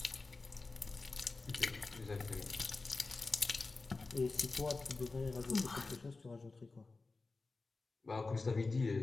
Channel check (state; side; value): quieter; right; 3.7 dB